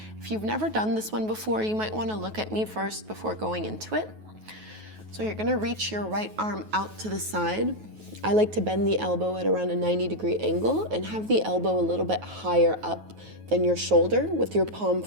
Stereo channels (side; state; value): left; late; 9.3 ms